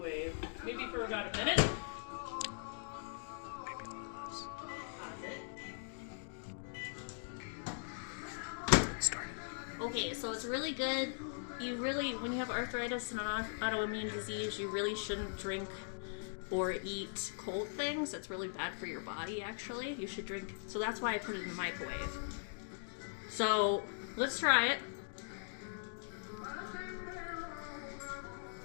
Maybe for about a minute. Okay, so it's really good. When you have arthritis and an autoimmune disease, you really shouldn't drink or eat cold things. That's really bad for your body, actually. You should drink, so that's why I put it in the microwave. So, let's try it.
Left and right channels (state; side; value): silent; right; digital silence